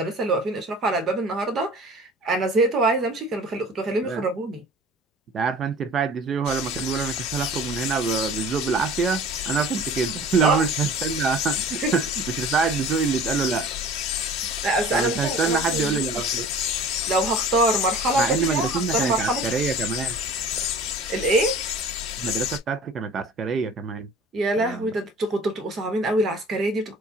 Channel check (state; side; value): normal; both; correlation 0.44